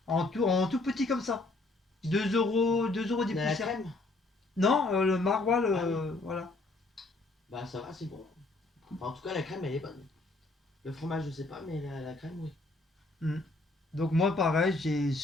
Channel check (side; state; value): right; quieter; 3.1 dB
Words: En tout petit comme ça. 2 € des De la poussières. crème. Non, le maroilles, Ah oui. voilà. Bah ça va, c'est bon. Enfin, en tout cas, la crème, elle est bonne. Le fromage, je sais pas, mais la crème, oui. Mm. Donc moi pareil, j'ai